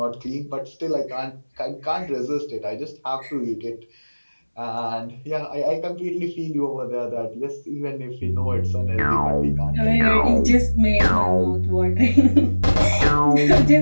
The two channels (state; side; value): inverted; both; correlation -1.00